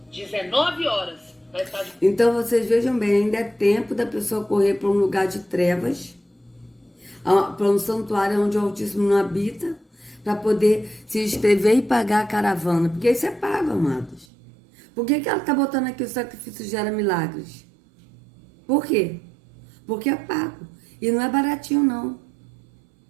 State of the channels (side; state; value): left; drops out; at 14.2 s